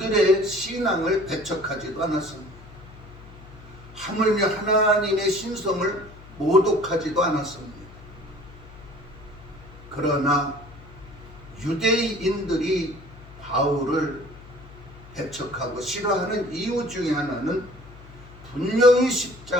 신앙을 배척하지도 않았습니다. 하물며 하나님의 신성을 모독하지도 않았습니다. 그러나 유대인들이 바울을 배척하고 싫어하는 이유 중에 하나는 분명히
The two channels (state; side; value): noise; left; hum, 19 dB below the sound